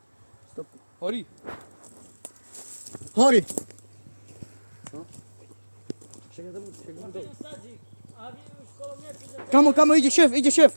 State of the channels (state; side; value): inverted; both; correlation -1.00